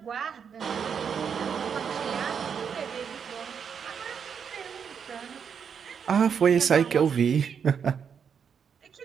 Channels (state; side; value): quieter; left; 7.0 dB